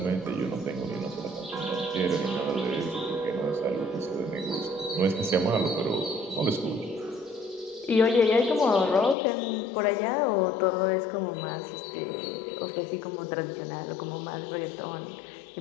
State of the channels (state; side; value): drops out; right; at 9.2 s